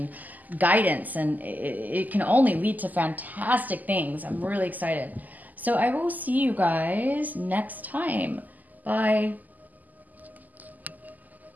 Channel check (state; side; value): late; left; 0.082 ms